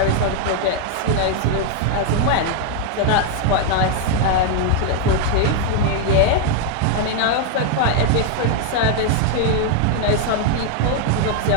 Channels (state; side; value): different; both; correlation 0.00